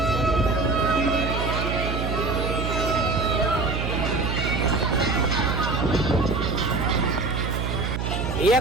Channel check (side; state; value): right; noise; hum, 2 dB below the sound